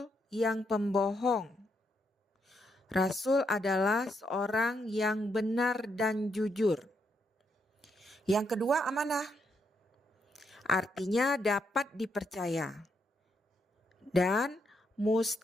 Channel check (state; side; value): normal; both; correlation 0.78